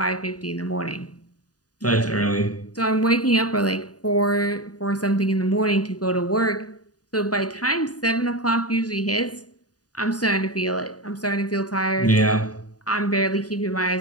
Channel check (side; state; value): right; late; 0.68 ms